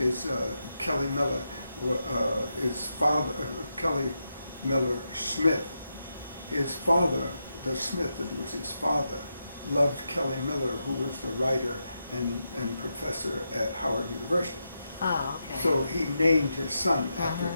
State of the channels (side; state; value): both; inverted; correlation -0.86